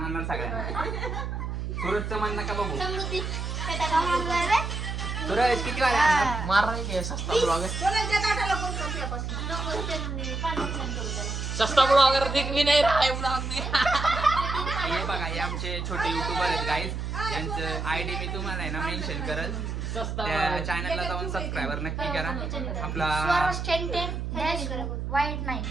आणणार सगळ्यांना. सूरजचं मन नका बघू. समृद्धी सूरज किती वाले आणणार? मारणार की सस्ता ब्लॉगर. कोणाच्या ताटाला कोण करते सस्ता ब्लॉगर दिख भी नाही रहा है ब्लॉग में. हे बघा हे आमचे छोटे युट्यूबर आहेत गाईज. यांचं आयडी मी तुम्हाला आहे ना मेन्शन करल. त्या चॅनलला जाऊन सबस्क्रायबर नक्की करा. आपला वाईट नाही.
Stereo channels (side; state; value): right; noise; hum, 4 dB below the sound